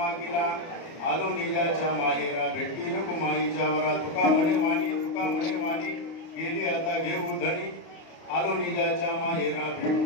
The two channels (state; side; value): late; right; 30 ms